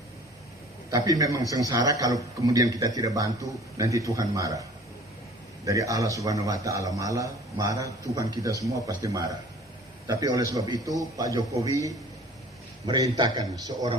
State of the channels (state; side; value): normal; both; correlation 0.48